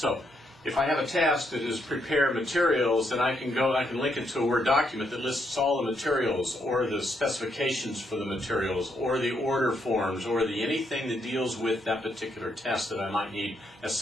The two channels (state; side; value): normal; both; correlation 0.76